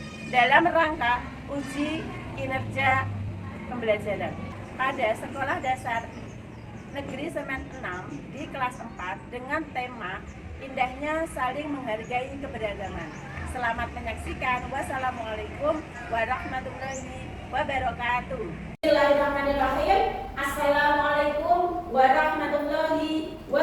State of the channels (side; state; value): both; identical; correlation 1.00